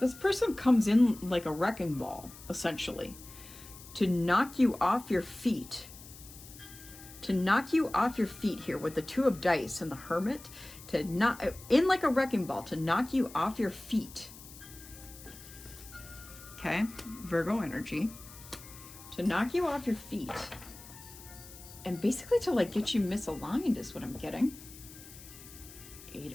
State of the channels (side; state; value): left; noise; hiss, 17 dB below the sound